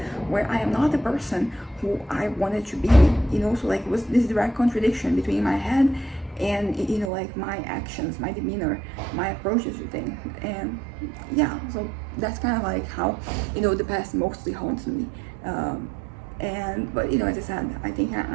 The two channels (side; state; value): left; drops out; at 7.1 s